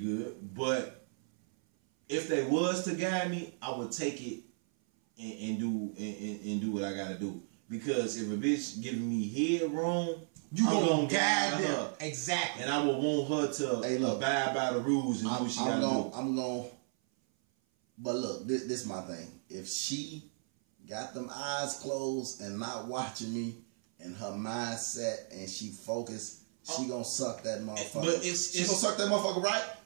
But if they was to guide me, I would take it and do what I gotta do. Because if a bitch giving me head wrong, you gonna guide her. Exactly. And I would want her to abide by the rules and do what she gotta do. I'm going. But look, this my thing. If she got them eyes closed and not watching me and her mindset and she focused, she gonna suck that motherfucker. But she gonna suck that motherfucker, right?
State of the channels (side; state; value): left; silent; 55 dB below the other